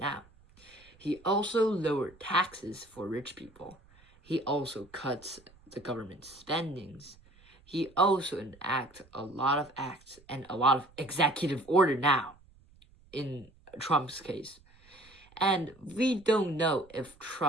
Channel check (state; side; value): noise; right; rumble, 27 dB below the sound